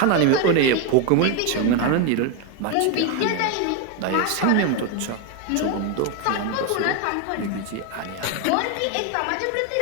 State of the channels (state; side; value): different; both; correlation 0.02